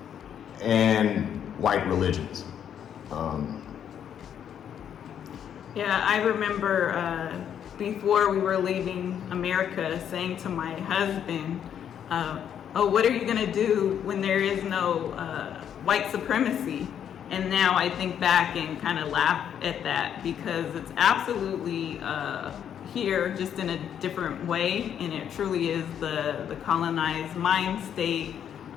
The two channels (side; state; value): right; quieter; 9.0 dB